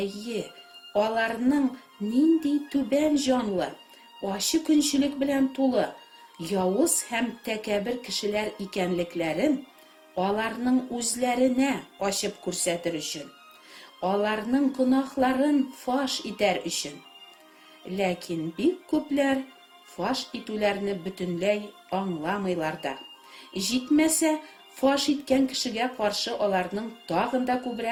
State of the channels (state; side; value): identical; both; correlation 1.00